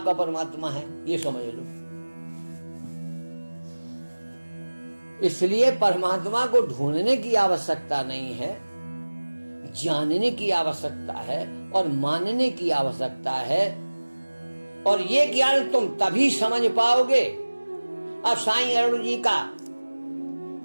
परमात्मा है, ये समझ लो। इसलिए परमात्मा को ढूंढने की आवश्यकता नहीं है, जानने की आवश्यकता है और मानने की आवश्यकता है। और ये ज्ञान तुम तभी समझ पाओगे। अब साईं अरुण जी का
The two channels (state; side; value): inverted; both; correlation -1.00